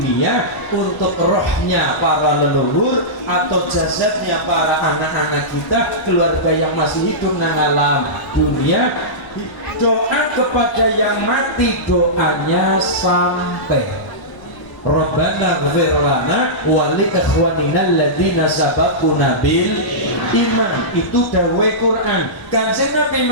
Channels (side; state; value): right; late; 1.0 ms